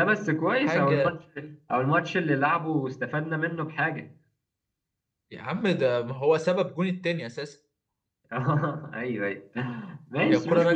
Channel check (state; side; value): identical; both; correlation 1.00